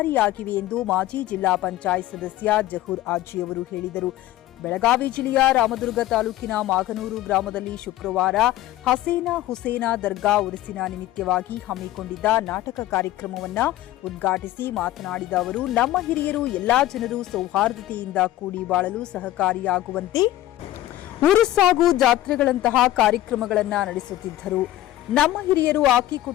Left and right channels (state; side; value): quieter; right; 14.6 dB